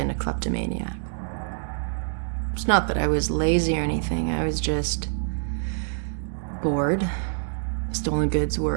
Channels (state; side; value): silent; left; digital silence